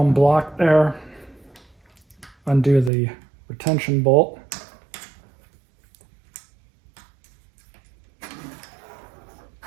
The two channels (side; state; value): left; drops out; at 2.9 s